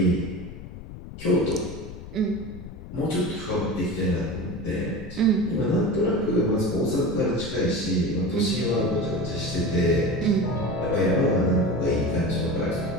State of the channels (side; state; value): left; noise; rumble, 13 dB below the sound